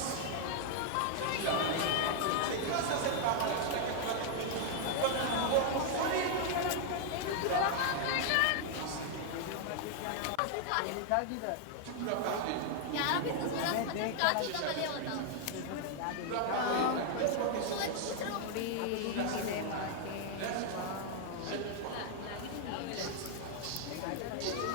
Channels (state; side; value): different; both; correlation 0.00